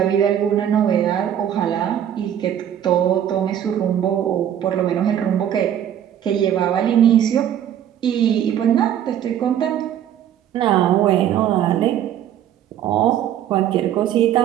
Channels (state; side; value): quieter; left; 10.3 dB